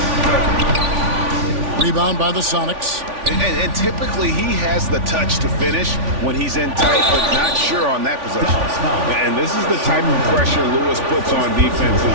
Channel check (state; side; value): late; left; 3.5 ms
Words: Rebound by the Sonics. And typically he has the touch to finish when he's in tight, but not sure on that possession. And this is the type of pressure Lewis puts on